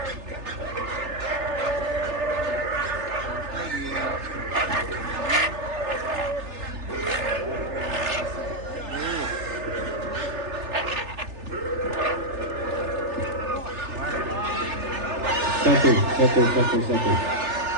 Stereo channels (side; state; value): left; late; 3.4 ms